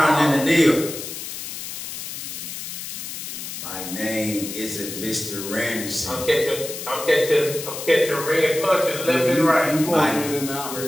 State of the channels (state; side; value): noise; left; hiss, 8 dB below the sound